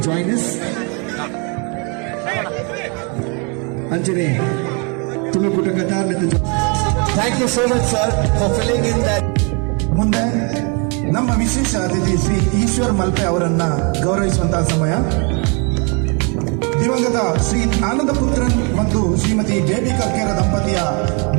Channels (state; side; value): quieter; left; 34.4 dB